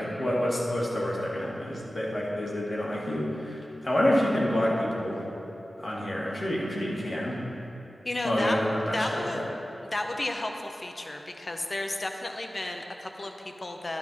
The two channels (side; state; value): both; normal; correlation 0.95